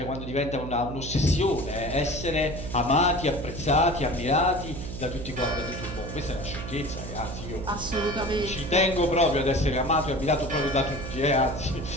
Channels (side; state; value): right; noise; hum, 8 dB below the sound